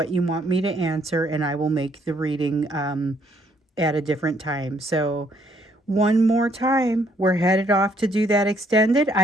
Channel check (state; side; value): normal; both; correlation 0.68